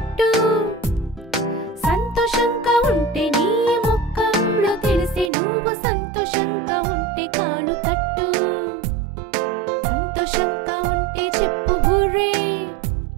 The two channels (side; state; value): left; drops out; at 5.3 s